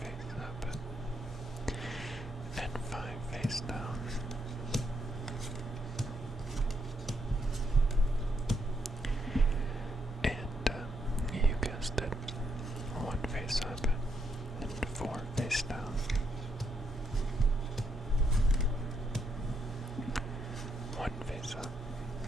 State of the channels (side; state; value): both; normal; correlation 0.78